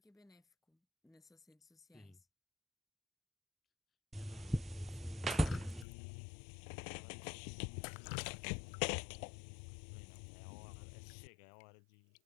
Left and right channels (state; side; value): drops out; right; at 5.9 s